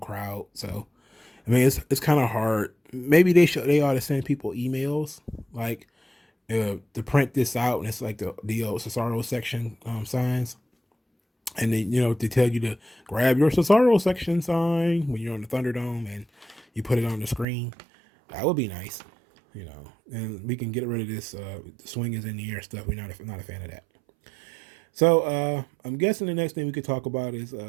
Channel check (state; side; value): drops out; left; at 17.4 s